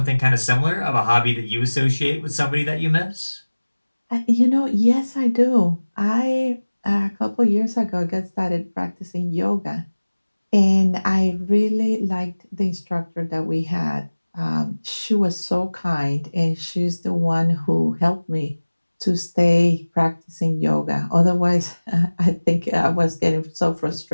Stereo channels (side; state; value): both; inverted; correlation -1.00